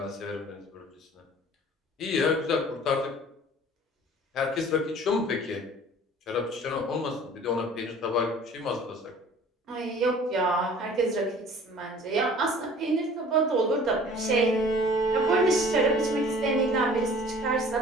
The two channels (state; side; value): normal; both; correlation 0.48